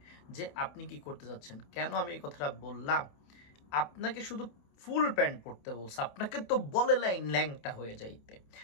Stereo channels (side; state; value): right; late; 28 ms